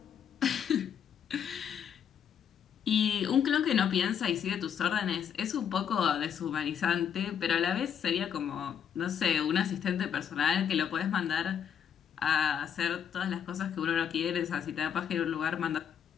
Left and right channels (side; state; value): right; quieter; 8.3 dB